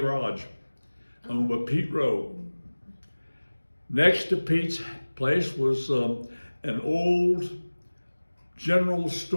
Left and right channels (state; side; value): inverted; both; correlation -1.00